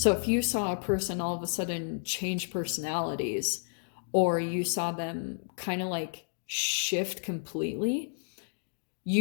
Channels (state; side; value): silent; right; digital silence